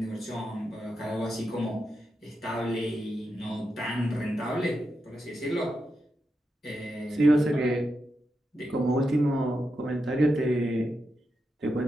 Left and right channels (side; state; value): both; normal; correlation 0.87